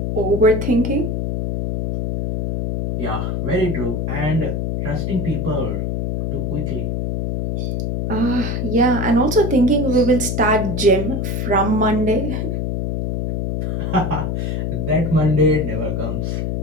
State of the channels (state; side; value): noise; left; hum, 1 dB below the sound